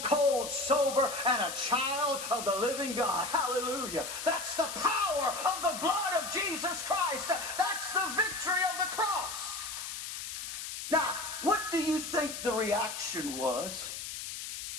cold sober and a child of the living God. Hallelujah. That's the power of the blood of Jesus Christ. That's the victory of the cross. Now, what do you think the reaction was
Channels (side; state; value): left; noise; hiss, 7 dB below the sound